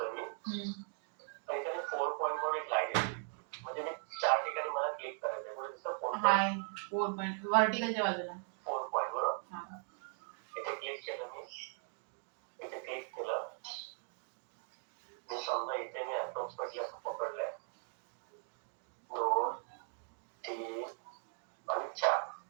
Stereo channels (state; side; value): silent; left; 52 dB below the other